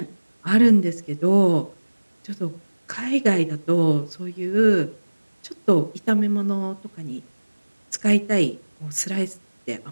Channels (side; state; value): both; inverted; correlation -1.00